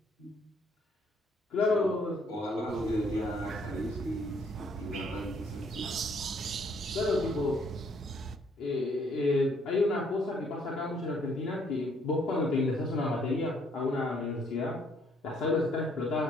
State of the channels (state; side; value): normal; both; correlation 0.66